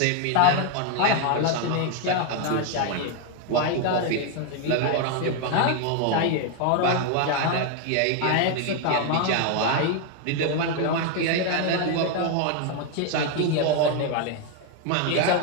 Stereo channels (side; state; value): both; different; correlation 0.01